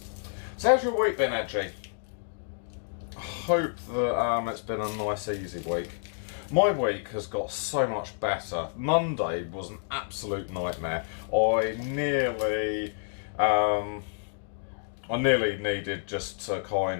So how's your week been, Edgy? Hope that it's been a nice, easy week. My week has got so much better. Monday was an absolute nightmare. I nearly needed just to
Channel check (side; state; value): right; silent; digital silence